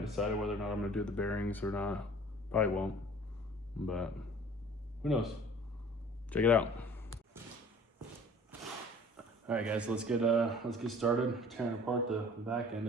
decided whether or not I'm gonna do the bearings or not. Probably won't, but who knows? Check it out. All right, guys, let's get started tearing apart the back end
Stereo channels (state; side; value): normal; both; correlation 0.48